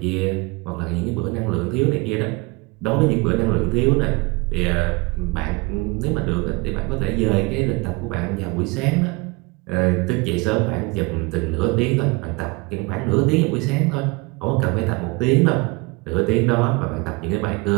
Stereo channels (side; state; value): left; quieter; 25.9 dB